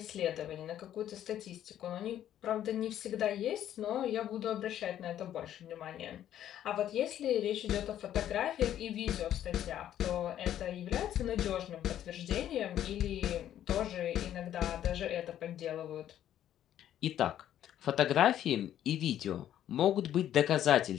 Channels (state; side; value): quieter; right; 11.3 dB